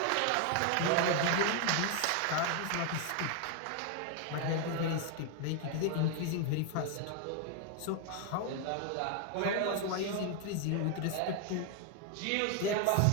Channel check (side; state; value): both; different; correlation 0.01